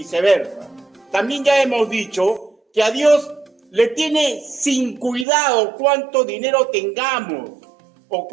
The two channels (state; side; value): drops out; left; at 5.2 s